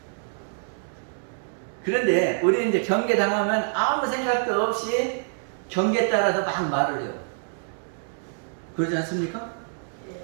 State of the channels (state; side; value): silent; left; digital silence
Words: 그런데 우리 이제 경계당하면 아무 생각도 없이 경계에 따라서 막 말을 해요. 그러지 않습니까?